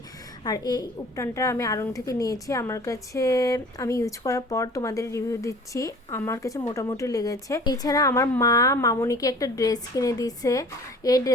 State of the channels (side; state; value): both; normal; correlation 0.47